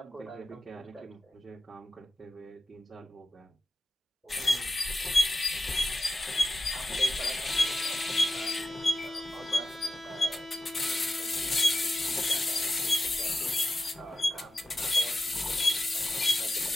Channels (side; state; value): both; normal; correlation 0.93